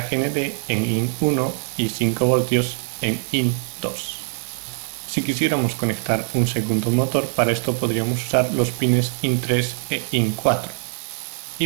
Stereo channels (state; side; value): silent; left; digital silence